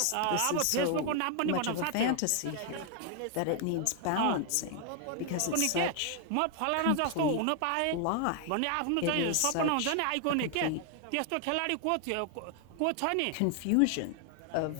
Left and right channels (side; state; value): both; different; correlation 0.00